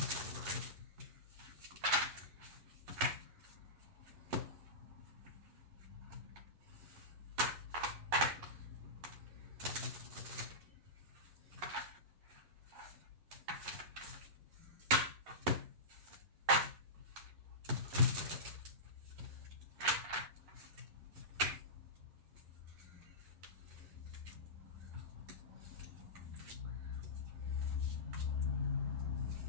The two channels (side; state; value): left; late; 11 ms